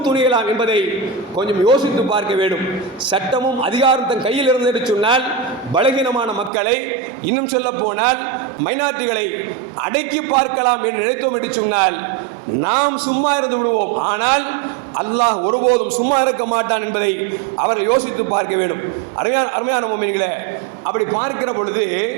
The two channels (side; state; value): left; drops out; at 6.5 s